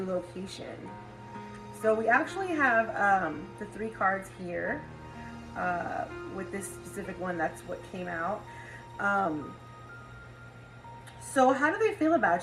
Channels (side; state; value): both; identical; correlation 1.00